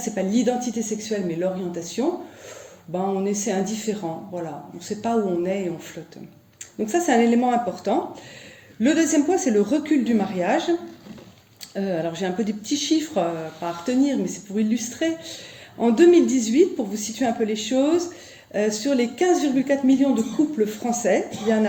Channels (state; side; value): identical; both; correlation 1.00